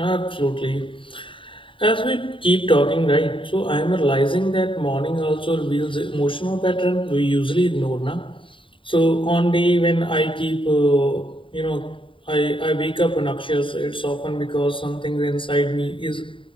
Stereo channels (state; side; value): late; right; 0.25 ms